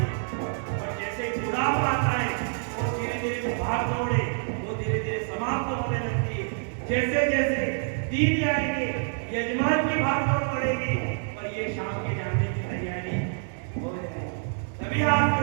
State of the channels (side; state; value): left; silent; 60 dB below the other